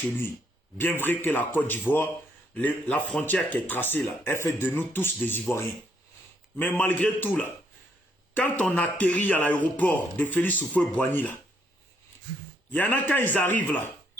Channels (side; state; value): both; normal; correlation 0.71